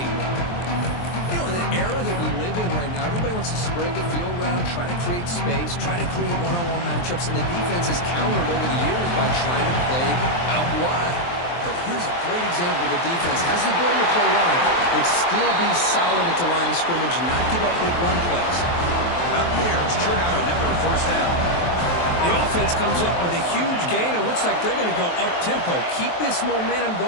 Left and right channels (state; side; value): late; right; 23 ms